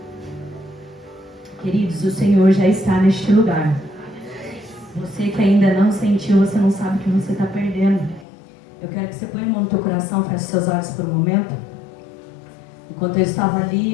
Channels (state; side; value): drops out; right; at 8.2 s